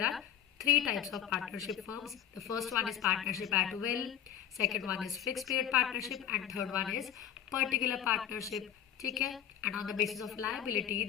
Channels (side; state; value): right; quieter; 10.1 dB